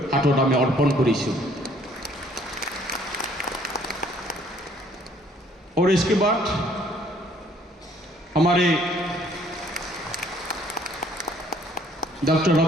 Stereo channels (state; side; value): normal; both; correlation 0.61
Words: हाथत आमी अर्पण करिছোঁ। और इसके बाद हमारे डॉक्टर